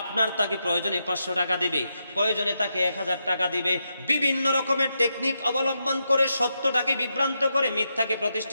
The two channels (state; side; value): inverted; both; correlation -0.84